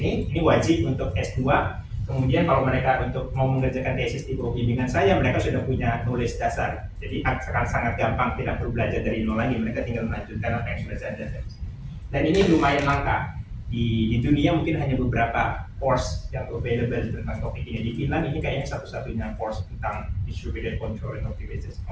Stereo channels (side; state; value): both; identical; correlation 1.00